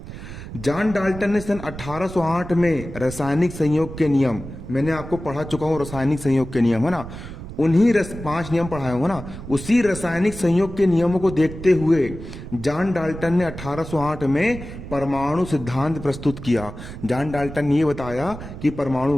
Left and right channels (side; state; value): right; noise; rumble, 11 dB below the sound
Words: जॉन डाल्टन ने सन 1808 में रासायनिक संयोग के नियम, मैंने आपको पढ़ा चुका हूं रासायनिक संयोग के नियम, है ना। उन्हीं 5 नियम पढ़ाए हूं ना, उसी रासायनिक संयोग के नियमों को देखते हुए जॉन डाल्टन ने 1808 में परमाणु सिद्धांत प्रस्तुत किया। जॉन डाल्टन ने यह बताया कि